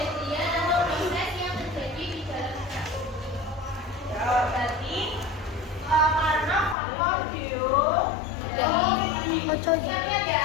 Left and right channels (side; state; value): right; drops out; at 6.8 s